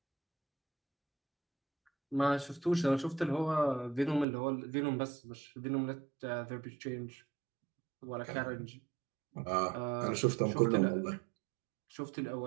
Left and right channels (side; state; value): left; drops out; at 4.2 s